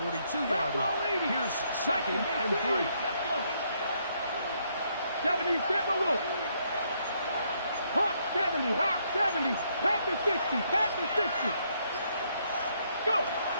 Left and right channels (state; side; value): inverted; both; correlation -0.72